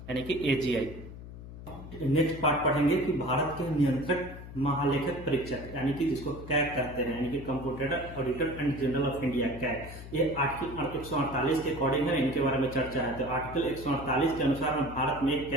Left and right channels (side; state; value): left; noise; hum, 13 dB below the sound